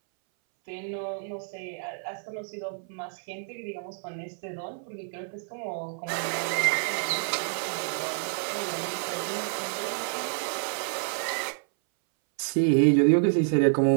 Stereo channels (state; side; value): silent; left; 59 dB below the other